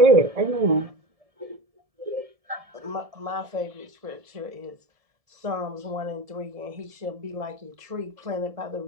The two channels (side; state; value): left; late; 1.7 ms